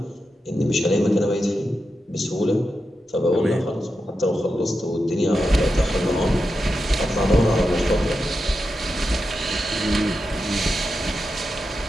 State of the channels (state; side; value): normal; both; correlation 0.88